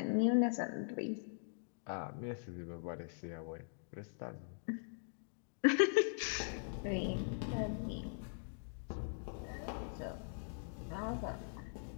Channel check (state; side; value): silent; right; digital silence